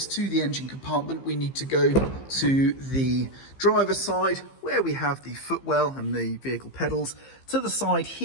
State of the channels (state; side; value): late; right; 15 ms